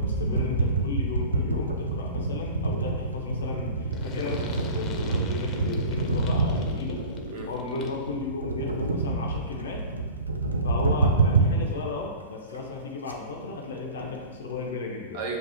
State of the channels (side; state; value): both; inverted; correlation -0.39